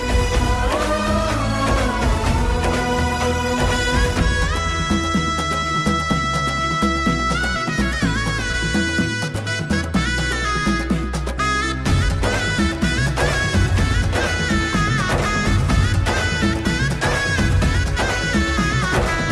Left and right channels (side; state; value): both; identical; correlation 1.00